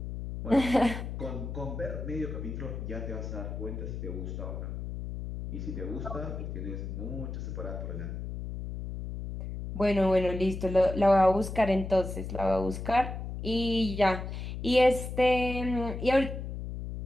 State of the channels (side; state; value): left; noise; hum, 6 dB below the sound